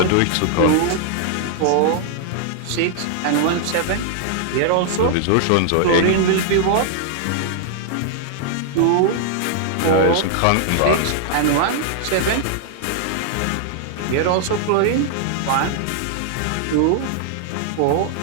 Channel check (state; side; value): different; both; correlation 0.00